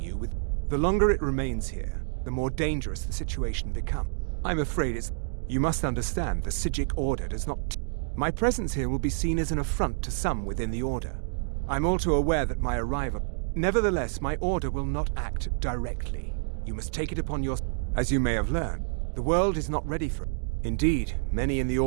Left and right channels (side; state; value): left; silent; digital silence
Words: with... The longer it remains here, the more dangerous the situation becomes. I'm afraid it's... You must understand, the Psijic Order does not... My presence here will be seen as an affront to some within the Order. I'm all too aware that my arrival... Nevertheless, my Order will not act directly. You must take it upon your... As you may have learned, the world is not ready for it. Indeed, many in the